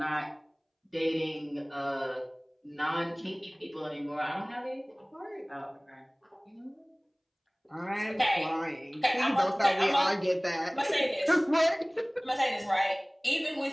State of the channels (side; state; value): both; identical; correlation 1.00